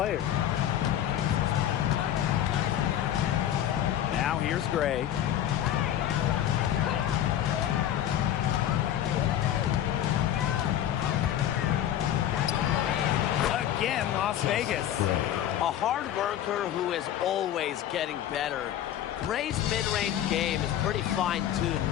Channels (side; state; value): right; quieter; 11.2 dB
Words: Now here's Gray. Again, Las Vegas. A A hard worker who is always getting better. Gray's mid-range game is pretty